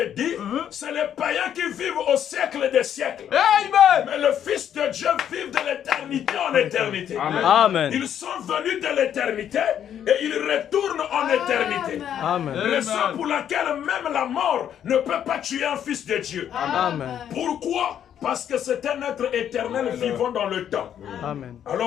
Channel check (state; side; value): quieter; right; 9.6 dB